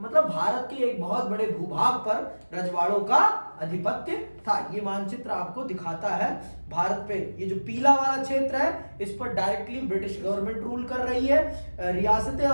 भारत के एक बहुत बड़े भूभाग पर रजवाड़ों का आधिपत्य था। ये मानचित्र आपको दिखाता है भारत पे, ये जो पीला वाला क्षेत्र है इस पर डायरेक्टली ब्रिटिश गवर्नमेंट रूल कर रही है। रियासतें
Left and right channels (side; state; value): both; inverted; correlation -1.00